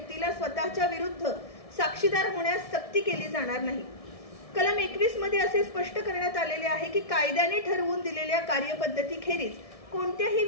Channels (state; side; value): late; right; 1.7 ms